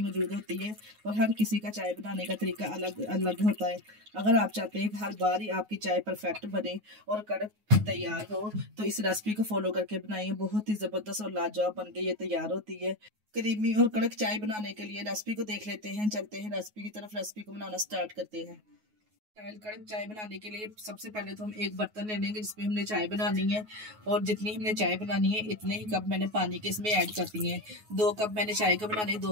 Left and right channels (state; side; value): late; left; 9.4 ms